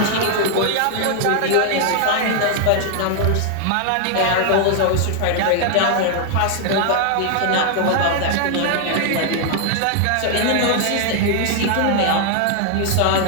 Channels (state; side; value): different; both; correlation 0.00